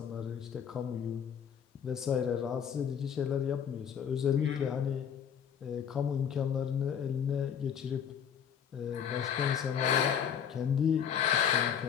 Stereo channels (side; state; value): right; quieter; 8.0 dB